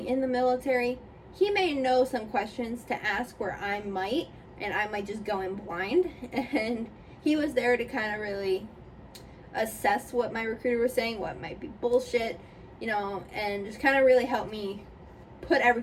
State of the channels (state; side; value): identical; both; correlation 1.00